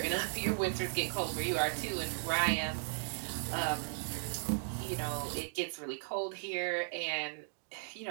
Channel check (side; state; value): left; silent; digital silence